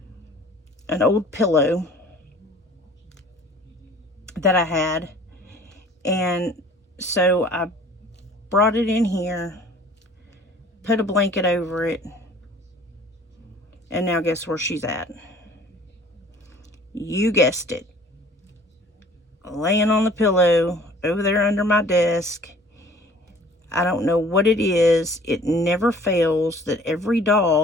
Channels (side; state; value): both; normal; correlation 0.51